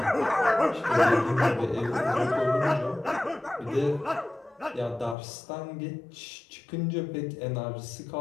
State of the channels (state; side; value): drops out; right; at 5.2 s